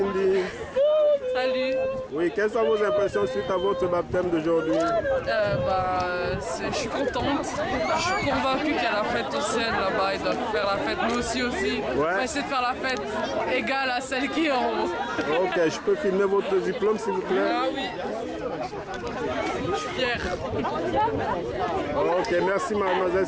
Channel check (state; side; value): identical; both; correlation 1.00